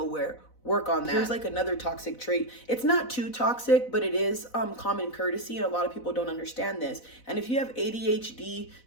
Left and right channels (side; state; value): right; late; 4.0 ms